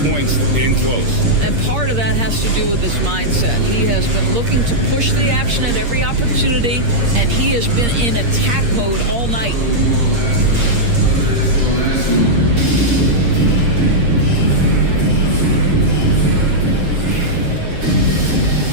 points in close. And part of that has to do with his mindset. He has been looking to push the action at every opportunity, and he has been in attack mode all night.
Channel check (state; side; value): late; left; 8.6 ms